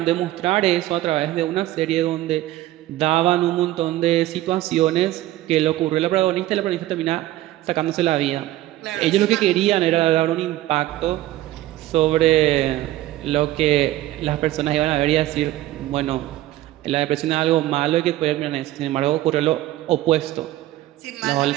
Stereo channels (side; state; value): left; quieter; 15.4 dB